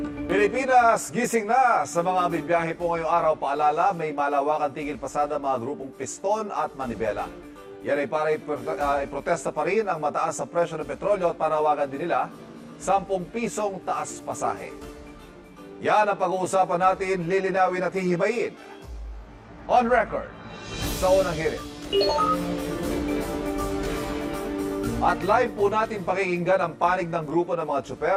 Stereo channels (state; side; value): identical; both; correlation 1.00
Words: Pilipinas, gising na! Sa mga bibiyahe po ngayong araw, paalala, may malawakang tigil pasada mga grupong piston at manibela. Yan ay para iprotesta pa rin ang mataas sa presyo ng petrolyo at panawagan din nila 10 pisong taas pasahe. Yan ang pag-uusapan natin, lilinawin at hihimayin. On record, sa unang hirit. At live po natin pakikinggan ang panig ng grupo ng mga